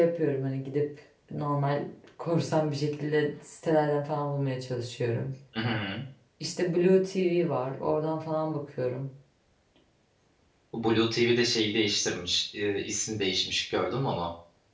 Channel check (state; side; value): identical; both; correlation 1.00